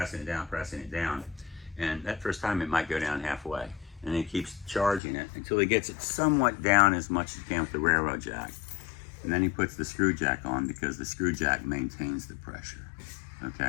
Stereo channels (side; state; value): right; drops out; at 5.0 s